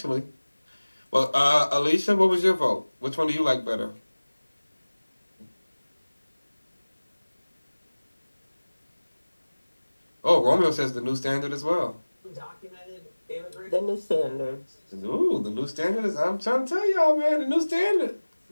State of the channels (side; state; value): both; inverted; correlation -1.00